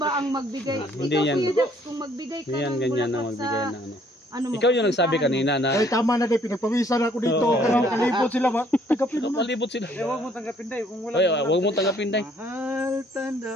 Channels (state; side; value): normal; both; correlation 0.62